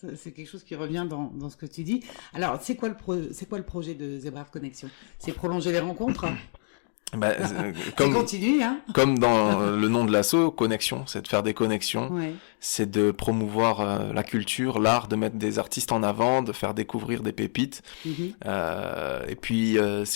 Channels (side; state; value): right; silent; 60 dB below the other